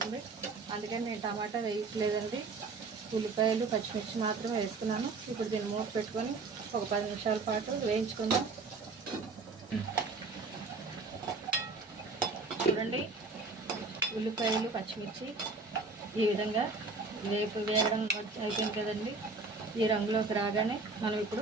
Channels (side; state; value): left; quieter; 3.9 dB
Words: అందుకని నేను టమాటా వేయట్లేదండి, ఉల్లిపాయలు పచ్చిమిర్చి మాత్రమే వేసుకున్నాను. ఇప్పుడు దీన్ని మూత పెట్టుకొని ఒక 10 నిమిషాల పాటు వేయించుకుందాం. చూడండి, ఉల్లిపాయలు పచ్చిమిర్చి ఈ విధంగా వేగడం అయిపోయింది కదండి. ఈ రంగులోకి రాగానే మనం